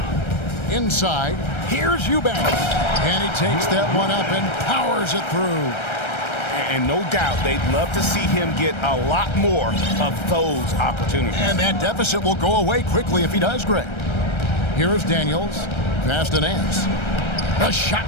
Inside. Here's Eubanks. And he takes that one up and powers it through. And no doubt they'd love to see him get a lot more of those opportunities. And that deficit will go away quickly if he does, Greg. Here is Daniels. pass to Nance. The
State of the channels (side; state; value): right; late; 1.3 ms